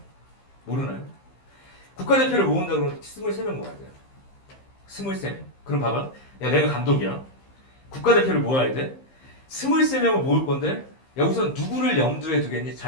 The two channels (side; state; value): right; late; 15 ms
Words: 모르나요? 국가대표를 모은다 그러면 23명 모아야 돼요. 23명. 그럼 봐봐. 야, 내가 감독이야. 국가대표를 모아야 돼. 23명을 모을 건데, 야, 우선 누구를 염두에 두겠니?